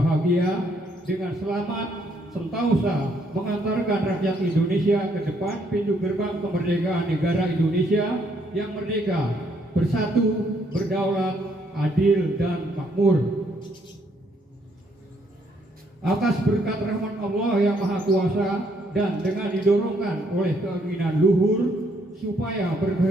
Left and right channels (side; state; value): both; normal; correlation 0.70